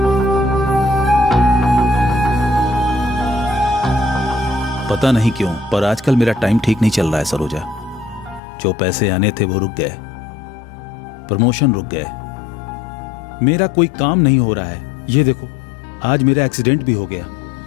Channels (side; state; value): right; drops out; at 8.4 s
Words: पता नहीं क्यों, पर आजकल मेरा टाइम ठीक नहीं चल रहा है सरोजा। जो पैसे आने थे वो रुक गए, प्रमोशन रुक गए, मेरा कोई काम नहीं हो रहा है। ये देखो, आज मेरा एक्सीडेंट भी हो गया।